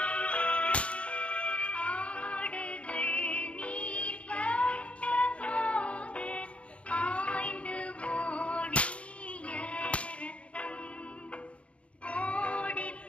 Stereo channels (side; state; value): right; late; 0.062 ms